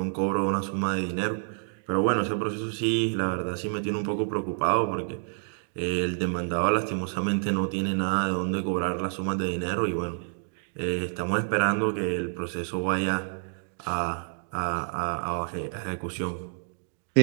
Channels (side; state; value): left; silent; digital silence